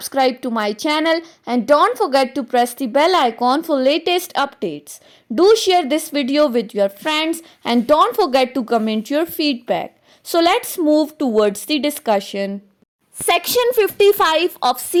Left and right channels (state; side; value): identical; both; correlation 1.00